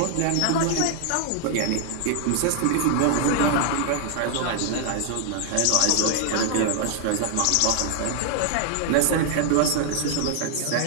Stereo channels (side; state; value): both; different; correlation 0.00